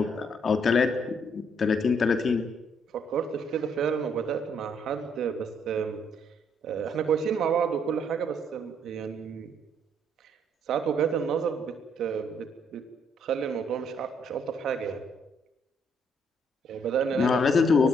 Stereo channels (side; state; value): both; normal; correlation 0.69